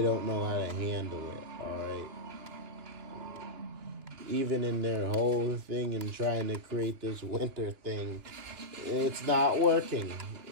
don't know how to handle it, alright? Even in their whole thing and trying to create this winter thing, it's not working.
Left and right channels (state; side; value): late; left; 2.9 ms